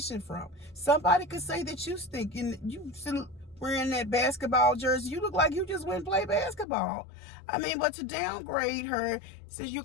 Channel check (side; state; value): right; drops out; at 6.7 s